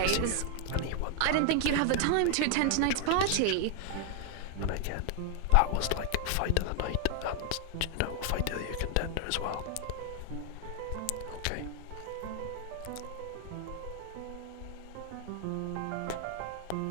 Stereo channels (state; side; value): different; both; correlation 0.00